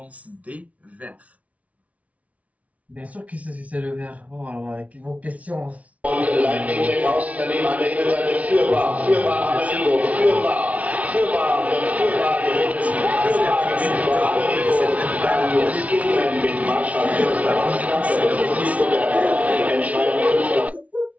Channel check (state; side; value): late; left; 0.067 ms